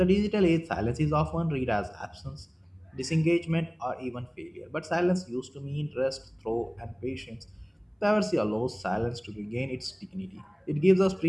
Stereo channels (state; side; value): identical; both; correlation 1.00